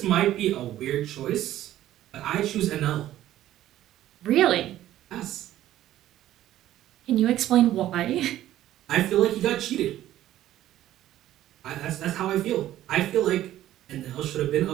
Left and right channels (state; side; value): quieter; left; 13.4 dB